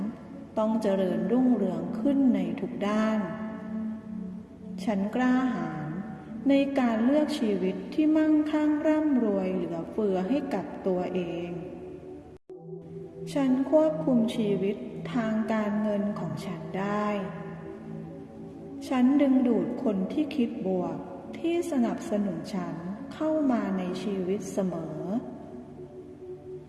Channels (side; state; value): both; identical; correlation 1.00